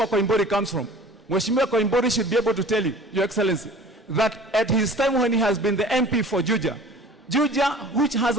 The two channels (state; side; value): normal; both; correlation 0.45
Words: Koimburi comes from. Mheshimiwa Koimburi should be able to tell you, Your Excellency, that at his time when he has been the MP for Juja, which has